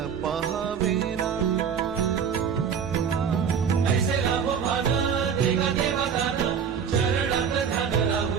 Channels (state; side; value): quieter; left; 7.2 dB